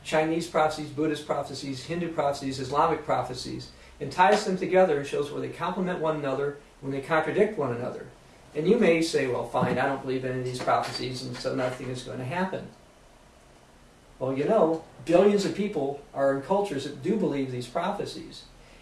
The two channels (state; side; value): identical; both; correlation 1.00